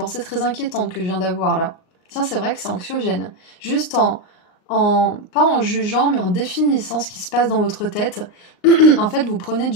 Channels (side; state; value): right; late; 39 ms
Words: très inquiétante que je viens d'avoir là. Tiens, c'est vrai que c'est anxiogène. Juste pas en jugeant, mais en définissant ce qui se passe dans votre tête, en fait, vous prenez